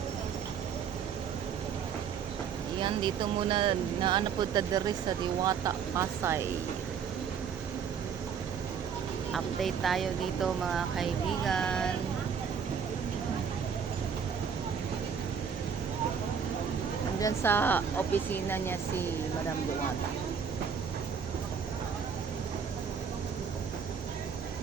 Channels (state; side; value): quieter; left; 7.0 dB